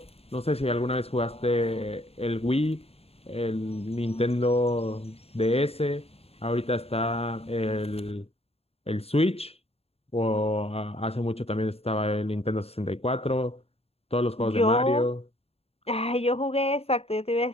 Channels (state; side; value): late; right; 0.29 ms